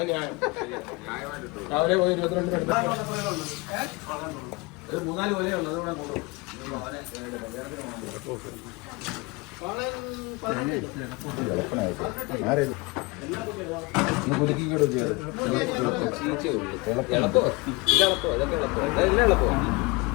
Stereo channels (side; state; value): right; quieter; 25.8 dB